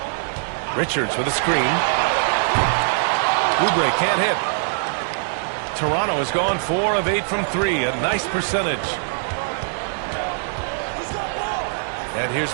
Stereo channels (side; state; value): left; silent; 64 dB below the other